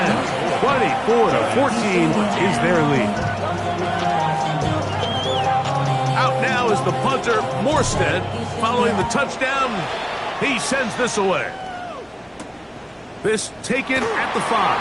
24-14 is their lead. Out now is the punter, Morstead. Following the touchdown, he sends this away. This taken at the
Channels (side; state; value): both; identical; correlation 1.00